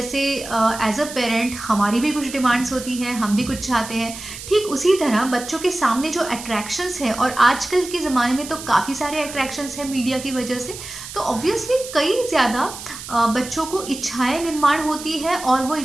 एज अ पेरेंट हमारी भी कुछ डिमांड्स होती हैं, हम भी कुछ चाहते हैं। ठीक उसी तरह बच्चों के सामने जो अट्रैक्शंस है, और आजकल के ज़माने में तो काफ़ी सारे अट्रैक्शंस हैं मीडिया की वजह से, तो ऑब्वियसली कई ज़्यादा बच्चों को इच्छाएं निर्माण होती है और वो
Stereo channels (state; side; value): noise; right; hiss, 12 dB below the sound